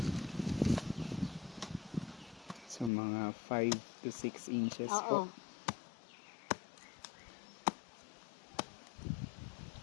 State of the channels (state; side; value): drops out; right; at 2.9 s